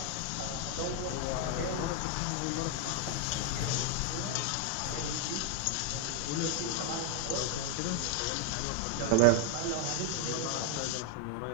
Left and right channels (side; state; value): both; different; correlation 0.01